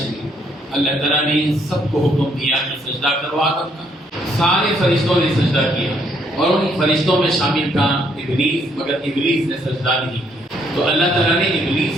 اللہ تعالیٰ نے سب کو حکم دیا کہ سجدہ کرو آدم کا. سارے فرشتوں نے سجدہ کیا اور ان فرشتوں میں شامل تھا ابلیس، مگر ابلیس نے سجدہ نہیں کیا. تو اللہ تعالیٰ نے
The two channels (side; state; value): both; normal; correlation 0.69